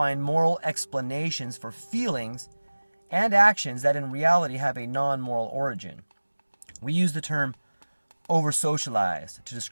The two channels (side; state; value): both; inverted; correlation -1.00